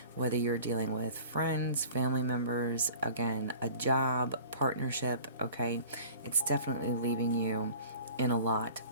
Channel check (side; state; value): both; inverted; correlation -0.44